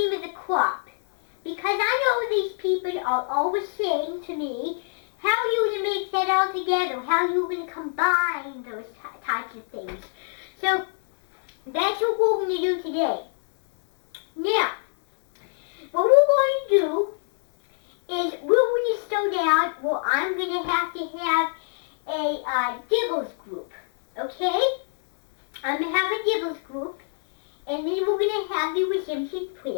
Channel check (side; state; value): right; silent; 61 dB below the other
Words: of the crop. Because I know these people are always saying to me, how are you going to make that all together? How are you going to combine those types of things? So that's what we're going to do today. Now, what we're going to do is we're going to slow down. Well, I'm going to have a Diggles group, okay? I'm going to have a Diggles group, and then we're going to have the redemption